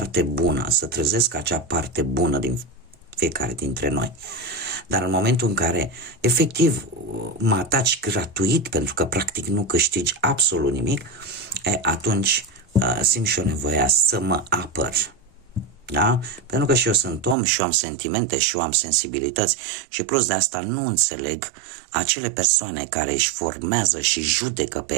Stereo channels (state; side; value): drops out; left; at 17.4 s